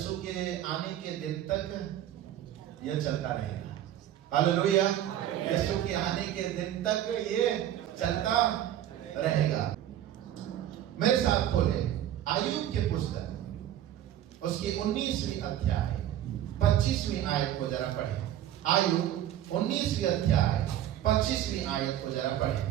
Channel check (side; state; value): left; quieter; 11.8 dB